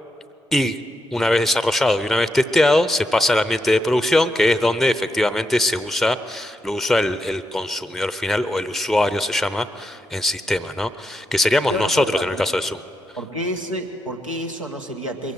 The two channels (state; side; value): normal; both; correlation 0.83